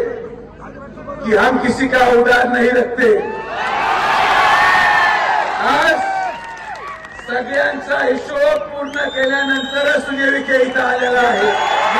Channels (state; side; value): identical; both; correlation 1.00